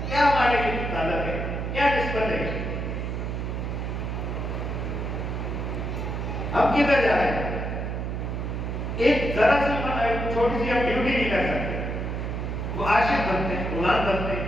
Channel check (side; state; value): right; noise; hum, 3 dB below the sound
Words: کیا ہمارے لیے تعلق ہے, کیا نسبت ہے؟ ہم کدھر جا رہے ہیں؟ ایک ذرا سی چھوٹی سی ہم ڈیوٹی نہیں کر سکتے. وہ عاشق بنتے ہیں, غلام بنتے